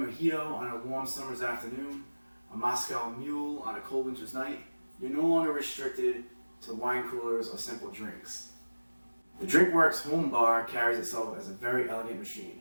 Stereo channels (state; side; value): inverted; both; correlation -1.00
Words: on a warm summer's afternoon, a Moscow Mule on a cold winter's night. You're no longer restricted to wine coolers or simple drinks. The Drinkworks Home Bar carries itself as a very elegant machine.